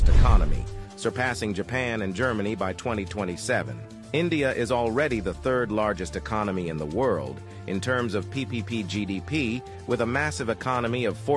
economy, surpassing Japan and Germany by 2027. India is already the 3rd largest economy in the world in terms of PPP GDP, with a massive economy of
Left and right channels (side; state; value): both; identical; correlation 1.00